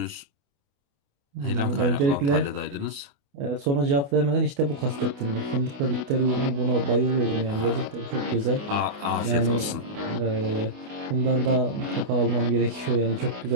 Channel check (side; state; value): left; late; 28 ms